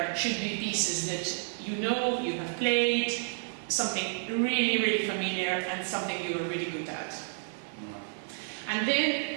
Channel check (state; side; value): silent; left; digital silence